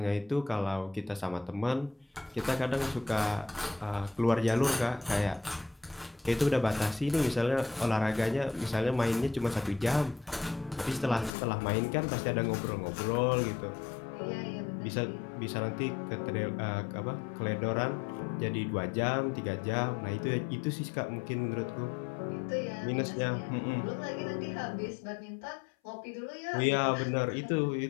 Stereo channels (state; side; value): drops out; right; at 11.3 s